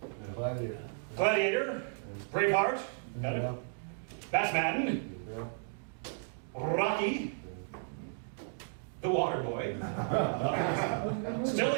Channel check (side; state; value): left; silent; digital silence